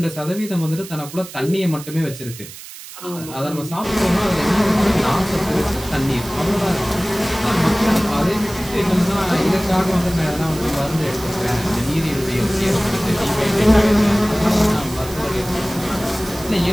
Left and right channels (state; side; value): noise; right; hiss, 15 dB below the sound